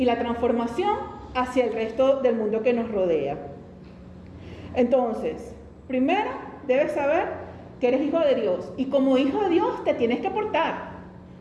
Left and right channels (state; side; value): identical; both; correlation 1.00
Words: la transformación hacia el resto del mundo que nos rodea. Entonces, primero debes saber que eres hijo de Dios y como hijo de Dios te tienes que portar.